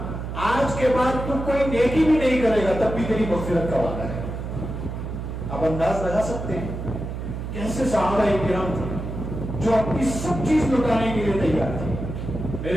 آج کے بعد تم کوئی نیکی بھی نہیں کرے گا تب بھی تیری مغفرت کا وعدہ ہے۔ اب انداز لگا سکتے ہیں کیسے صحابہ کرام تھے جو اپنی سب چیز لٹانے کے لیے تیار تھے۔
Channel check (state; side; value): noise; right; hum, 6 dB below the sound